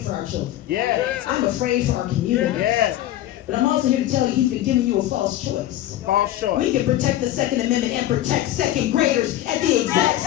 for our children. Yeah. I'm afraid for our community. Yeah. But I'm also here to tell you, he's been giving you a false choice. False choice. We can protect the Second Amendment and protect second graders at the exact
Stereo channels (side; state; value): right; quieter; 13.6 dB